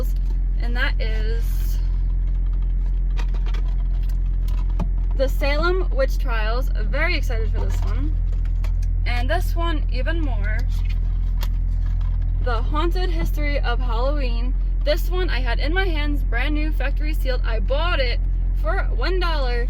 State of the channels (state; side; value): identical; both; correlation 1.00